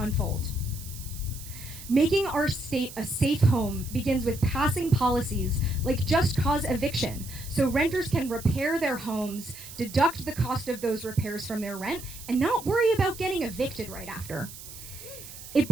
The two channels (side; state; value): right; noise; hiss, 14 dB below the sound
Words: Making our state a safe home begins with passing policies like just cause eviction, so renters can repair their homes, deduct the cost of those repairs from their rent, and not worry about getting evicted right after. It